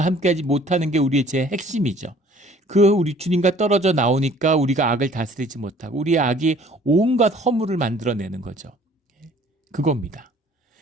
함께하지 못하는 게 우리의 죄의 핵심이죠. 우리 주님과 떨어져 나오니까 우리가 악을 다스리지 못하고 우리의 악이 온갖 허물을 만들어내는 거죠. 그겁니다.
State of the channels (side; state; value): both; normal; correlation 0.54